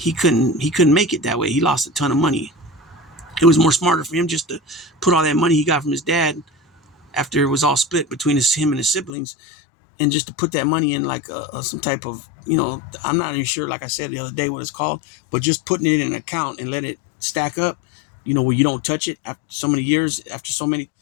couldn't make it that way. He lost a ton of money. It was more smarter for him just to put all that money he got from his dad after it was all split between him and his siblings, and just to put that money in like some type of, I'm not even sure, like I said the other day, what it's called, but just putting it in an account and let it stack up, where you don't touch it after so many years, after so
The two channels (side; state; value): right; drops out; at 9.1 s